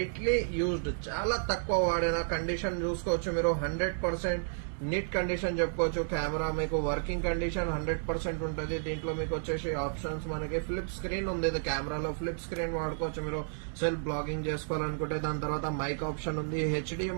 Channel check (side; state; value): left; silent; digital silence